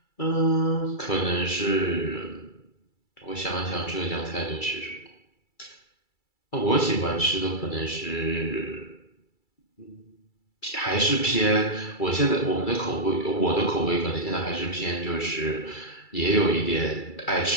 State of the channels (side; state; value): right; late; 2.3 ms